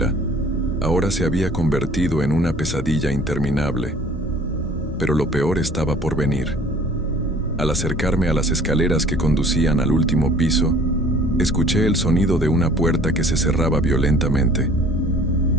ahora se había convertido en una pesadilla interminable. Pero lo peor estaba por venir. Al acercarme a las escaleras que conducían al último piso, escuché el sonido de una puerta que se cerraba violentamente.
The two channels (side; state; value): both; normal; correlation 0.52